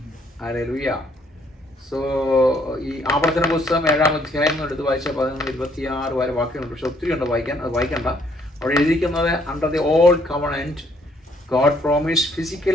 ഹല്ലേലൂയ. സോ ഈ ആവർത്തന പുസ്തകം 7-ാം അധ്യായം എടുത്ത് വായിച്ച 11-26 വരെ വാക്യങ്ങളുണ്ട്. പക്ഷെ ഒത്തിരി ഉണ്ട് വായിക്കാൻ, അത് വായിക്കണ്ട. അവിടെ എഴുതിയിരിക്കുന്നത് under the old covenant God promised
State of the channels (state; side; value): normal; both; correlation 0.66